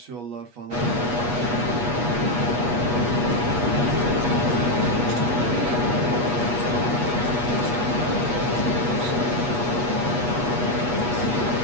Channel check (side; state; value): left; late; 8.3 ms